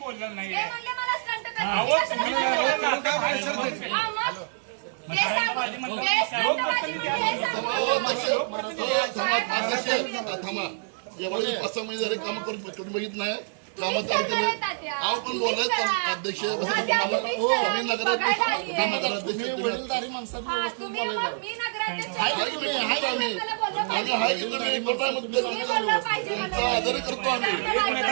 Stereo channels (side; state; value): left; silent; digital silence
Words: नाही एवढे 5-6 महिने झाले काम करून तुम्ही बघित नाही कामात आव पण बोलत अध्यक्ष वडीलधारी माणसात आदर करतो आम्ही